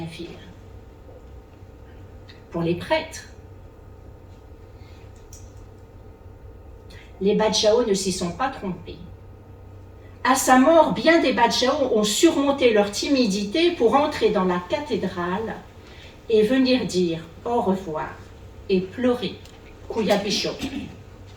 ville. Pour les prêtres. Les Badjao ne s'y sont pas trompés. À sa mort, bien des Badjao ont surmonté leur timidité pour entrer dans la cathédrale et venir dire au revoir et pleurer Kuya Bishop,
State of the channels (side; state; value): both; identical; correlation 1.00